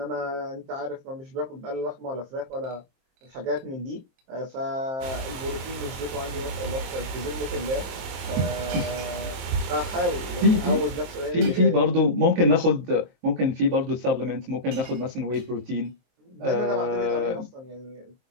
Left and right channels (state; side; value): late; left; 23 ms